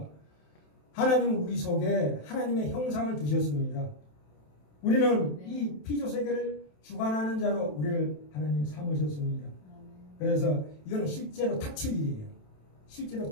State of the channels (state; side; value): late; right; 27 ms